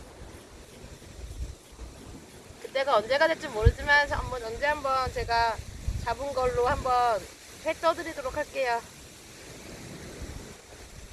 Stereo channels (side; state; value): both; identical; correlation 1.00